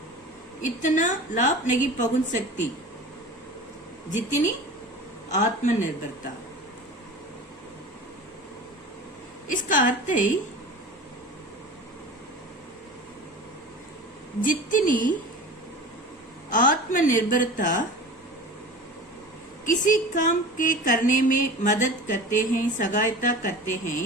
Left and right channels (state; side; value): normal; both; correlation 0.36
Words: इतना लाभ नहीं पहुंच सकती जितनी आत्मनिर्भरता। इसका अर्थ है जितनी आत्मनिर्भरता किसी काम के करने में मदद करते हैं, सहायता करते हैं,